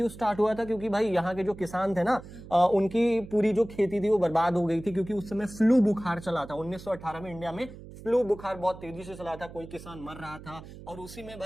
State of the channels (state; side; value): noise; right; hum, 16 dB below the sound